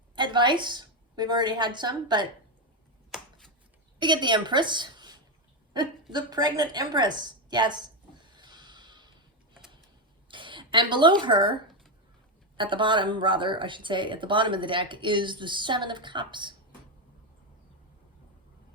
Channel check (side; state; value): both; normal; correlation 0.08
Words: Advice, we've already had some, but we get the Empress, the pregnant Empress, yes. And below her, at the bottom, rather, I should say, at the bottom of the deck, is the Seven of Cups.